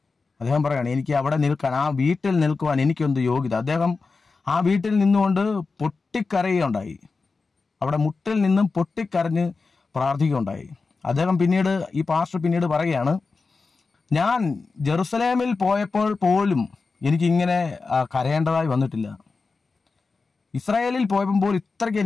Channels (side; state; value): right; quieter; 4.2 dB